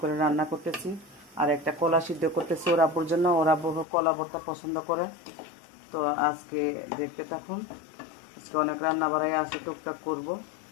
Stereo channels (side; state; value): right; drops out; at 3.9 s